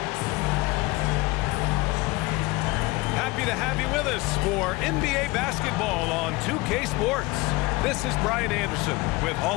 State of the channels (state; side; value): quieter; right; 22.3 dB